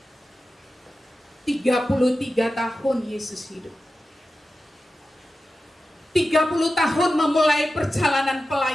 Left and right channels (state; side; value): normal; both; correlation 0.93